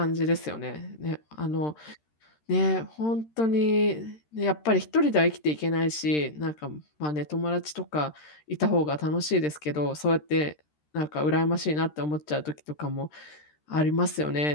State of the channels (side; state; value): right; late; 13 ms